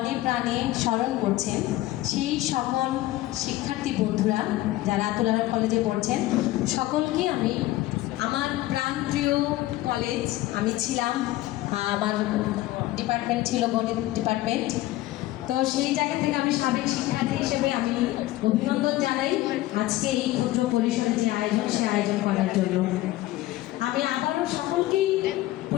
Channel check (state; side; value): quieter; right; 16.5 dB